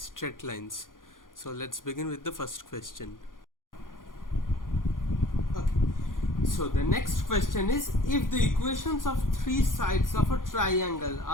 lines. So let's begin with the first question. Okay. So the next question is, if the equations of three sides of a triangle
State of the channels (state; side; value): late; right; 0.90 ms